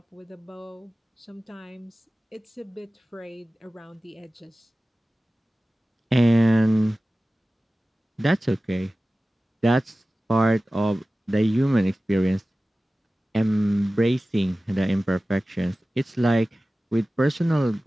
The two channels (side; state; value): both; normal; correlation 0.96